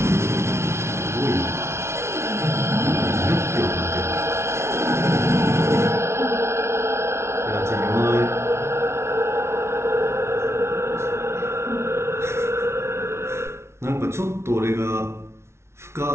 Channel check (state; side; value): late; left; 0.13 ms